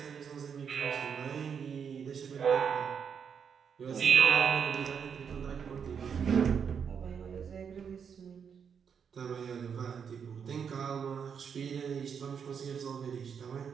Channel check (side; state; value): left; quieter; 7.0 dB